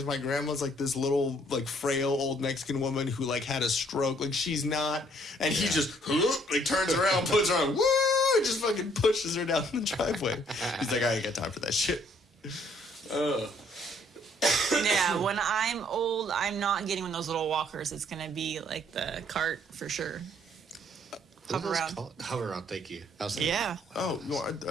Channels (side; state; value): both; normal; correlation 0.64